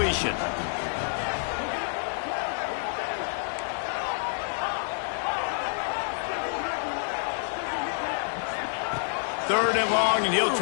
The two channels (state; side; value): silent; right; digital silence